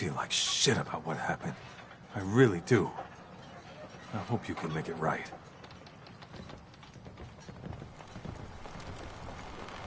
like shit about what happened. I really do. I hope you can make it right.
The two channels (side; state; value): both; identical; correlation 1.00